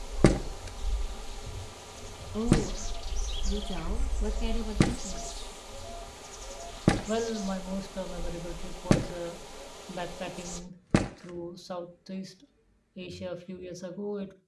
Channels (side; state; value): both; identical; correlation 1.00